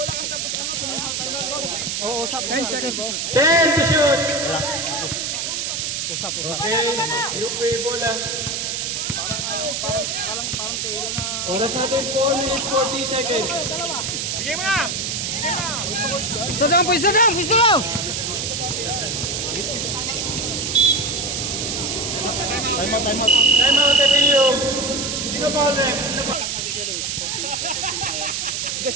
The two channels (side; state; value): right; noise; hiss, 2 dB below the sound